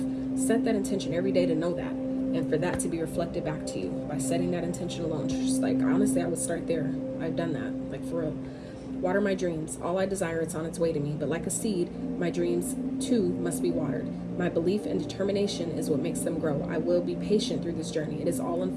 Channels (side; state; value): both; identical; correlation 1.00